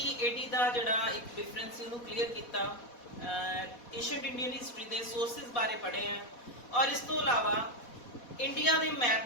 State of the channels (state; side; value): late; right; 4.1 ms